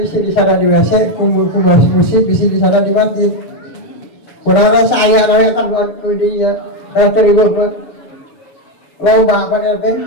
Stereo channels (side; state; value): right; late; 7.1 ms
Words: di sana di WC, ku musik bisi di sana di masjid. Kurang saya nanya kan buat dia, terima kasih. Lomba apa nanti?